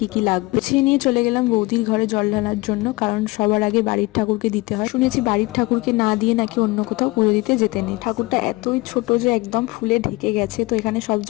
কি লাগবে। গুছিয়ে নিয়ে চলে গেলাম বৌদির ঘরে জল ঢালার জন্য, কারণ সবার আগে বাড়ির ঠাকুরকে দিতে হয়। শুনেছি বাড়ির ঠাকুরকে না দিয়ে নাকি অন্য কোথাও পুজো দিতে যেতে নেই। ঠাকুরটা এতই ছোট যে একদম ফুলে ঢেকে গেছে, তো এখানে সব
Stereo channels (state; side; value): quieter; right; 22.5 dB